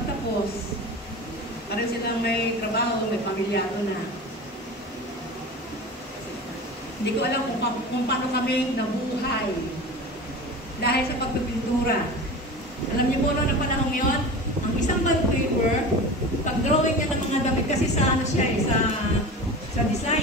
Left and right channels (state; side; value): normal; both; correlation 0.32